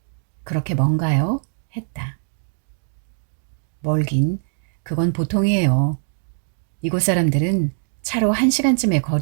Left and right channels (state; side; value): silent; left; digital silence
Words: 그렇게 먼가요? 했다. 멀긴 그건 보통이에요. 이곳 사람들은 차로 1시간쯤의